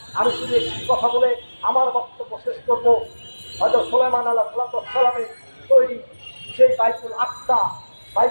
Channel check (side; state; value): both; inverted; correlation -1.00